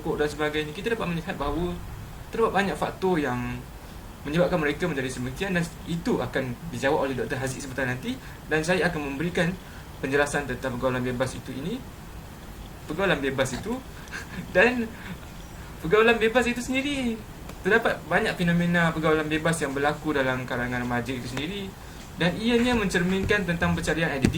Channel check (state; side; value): identical; both; correlation 1.00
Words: dan sebagainya, kita dapat melihat bahawa terdapat banyak faktor yang menyebabkan mereka menjadi sedemikian, dan itu akan dijawab oleh Dr. Haziq sebentar nanti, dan saya akan memberikan penjelasan tentang pergaulan bebas itu dan pergaulan bebas itu sendiri. Terdapat banyak fenomena pergaulan bebas yang berlaku dalam kalangan remaja itu sendiri, dan ianya mencerminkan tentang pencarian